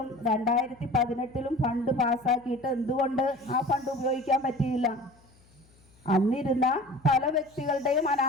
2018-ലും ഫണ്ട് പാസ്സാക്കിയിട്ട് എന്തുകൊണ്ട് ആ ഫണ്ട് ഉപയോഗിക്കാൻ പറ്റിയില്ല? അന്നിരുന്ന പല വ്യക്തികളുടെയും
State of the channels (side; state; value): left; noise; hum, 30 dB below the sound